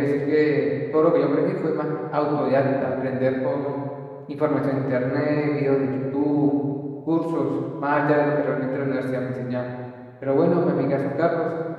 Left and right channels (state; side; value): identical; both; correlation 1.00